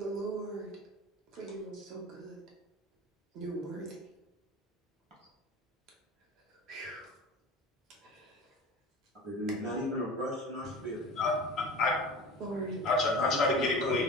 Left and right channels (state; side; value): normal; both; correlation 0.36